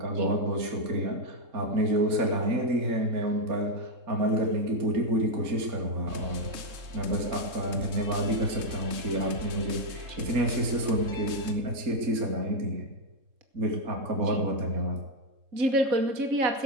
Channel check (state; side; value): late; left; 3.7 ms